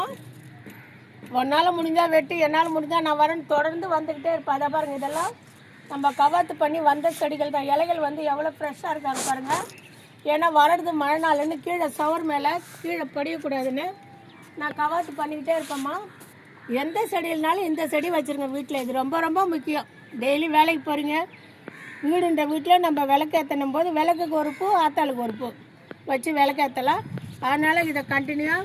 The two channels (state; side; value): identical; both; correlation 1.00